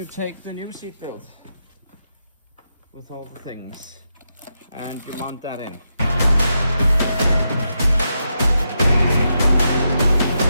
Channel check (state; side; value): inverted; both; correlation -0.85